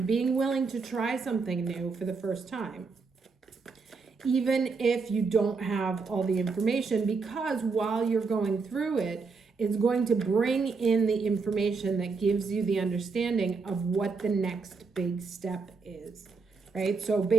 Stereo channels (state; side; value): quieter; left; 4.6 dB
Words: being willing to try something new for the first time, even if you don't have all the information, because while you're going through it, it's going to bring in the information that gives you the understanding of what the next big step is, right? So